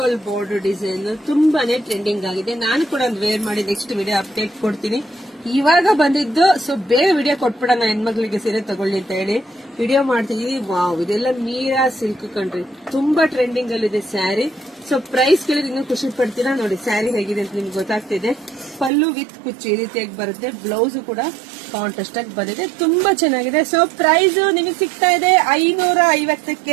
ಬೋರ್ಡರ್ ಡಿಸೈನ್ ತುಂಬಾನೇ ಟ್ರೆಂಡಿಂಗ್ ಆಗಿದೆ. ನಾನು ಕೂಡ ಒಂದು ವೇರ್ ಮಾಡಿ ನೆಕ್ಸ್ಟ್ ವಿಡಿಯೋ ಅಪ್ಡೇಟ್ ಕೊಡ್ತೀನಿ. ಇವಾಗ ಬಂದಿದ್ದು, ಸೊ ಬೇಗ ವಿಡಿಯೋ ಕೊಟ್ಬಿಡೋಣ, ಹೆಣ್ಮಕ್ಳಿಗೆ ಸೀರೆ ತಗೊಳ್ಳಿ ಅಂತ ಹೇಳಿ ವಿಡಿಯೋ ಮಾಡ್ತಿದೀವಿ. ವಾವ್, ಇದೆಲ್ಲ ಮೀರಾ ಸಿಲ್ಕ್ ಕಂಡ್ರಿ, ತುಂಬಾ ಟ್ರೆಂಡಿಂಗ್ ಅಲ್ಲಿ ಇದೆ ಸ್ಯಾರಿ. ಸೊ ಪ್ರೈಸ್ ಕೇಳಿದ್ರೆ ಇನ್ನೂ ಖುಷಿ ಪಡ್ತೀರಾ. ನೋಡಿ ಸ್ಯಾರಿ ಹೇಗಿದೆ ಅಂತ ನಿಮ್ಗೆ ಗೊತ್ತಾಗ್ತಿದೆ. ಪಲ್ಲು ವಿತ್ ಕುಚ್ಚು ಈ ರೀತಿಯಾಗಿ ಬರುತ್ತೆ. ಬ್ಲೌಸ್ ಕೂಡ ಕಾಂಟ್ರಾಸ್ಟ್ ಆಗಿ ಬಂದಿದೆ, ತುಂಬಾ ಚೆನ್ನಾಗಿದೆ. ಸೊ ಪ್ರೈಸ್ ನಿಮಗೆ ಸಿಗ್ತಾ ಇದೆ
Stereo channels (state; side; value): drops out; left; at 18.9 s